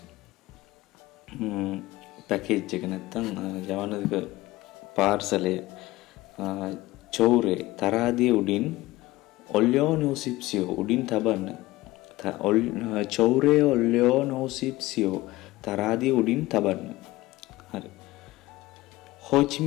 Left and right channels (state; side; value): quieter; right; 18.7 dB